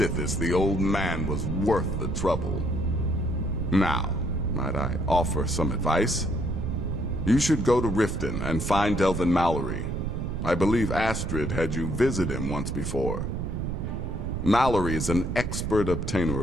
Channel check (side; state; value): right; noise; rumble, 3 dB below the sound